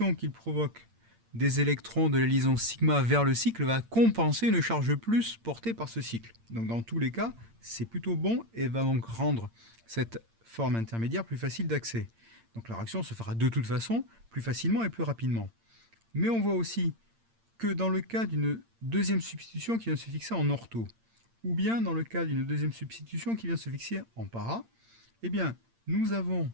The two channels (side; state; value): left; late; 8.8 ms